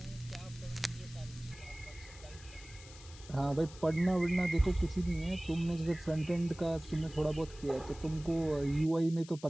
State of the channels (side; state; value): left; noise; hiss, 19 dB below the sound